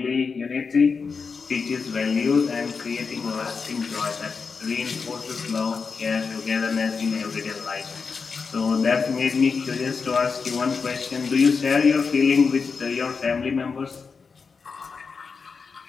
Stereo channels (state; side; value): quieter; right; 5.2 dB